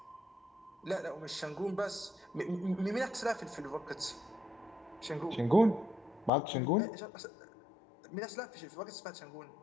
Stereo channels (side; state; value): right; drops out; at 6.3 s